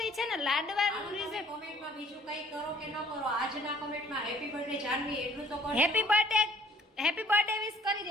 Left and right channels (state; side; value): normal; both; correlation 0.57